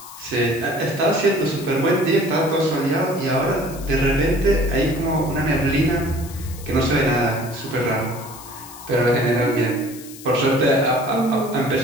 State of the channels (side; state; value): left; noise; hiss, 17 dB below the sound